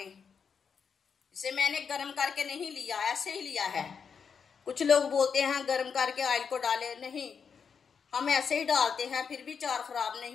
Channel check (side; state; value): right; quieter; 6.4 dB